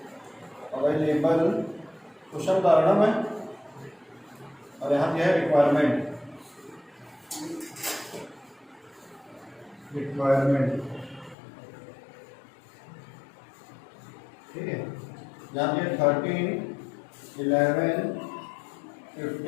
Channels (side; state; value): right; drops out; at 11.4 s